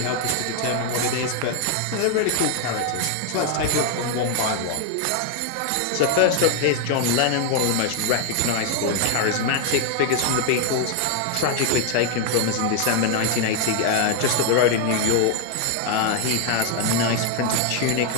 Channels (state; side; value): different; both; correlation 0.00